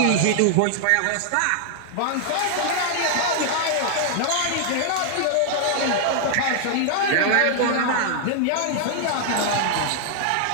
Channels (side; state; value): both; different; correlation 0.00